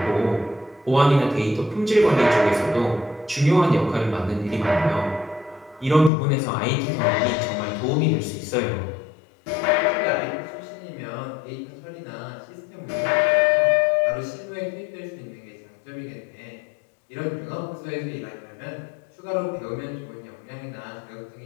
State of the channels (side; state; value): right; drops out; at 6.1 s